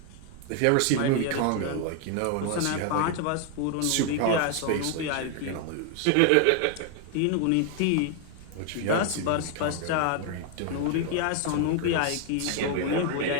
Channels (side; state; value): both; different; correlation 0.00